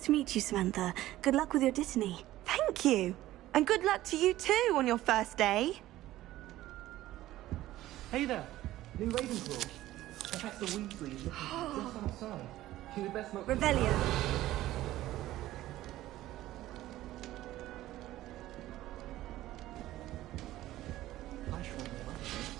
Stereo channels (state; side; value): quieter; left; 15.2 dB